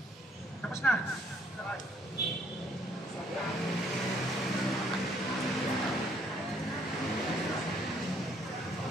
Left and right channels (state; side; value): normal; both; correlation 0.65